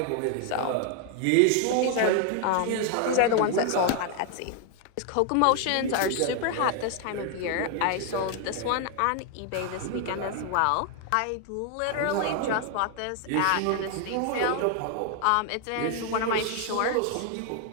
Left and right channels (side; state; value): both; different; correlation 0.00